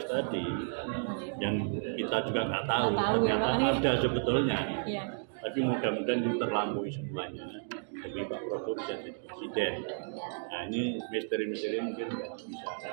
tadi yang kita juga nggak tahu Nggak tahu, ternyata ya, Pak. ada sebetulnya. Iya. Tapi mudah-mudahan itu terlampaui semuanya demi Pak Prabowo bisa jadi presiden. Nah ini misteri-misteri mungkin nggak bisa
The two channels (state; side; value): silent; left; digital silence